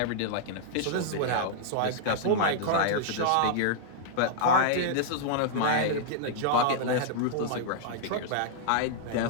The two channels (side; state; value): both; different; correlation -0.01